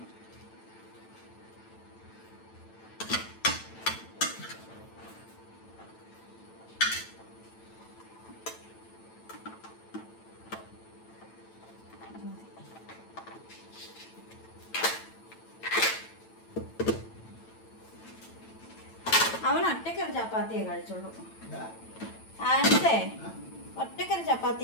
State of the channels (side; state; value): right; late; 9.0 ms